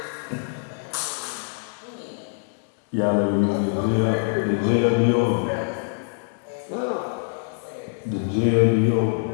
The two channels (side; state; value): right; silent; 62 dB below the other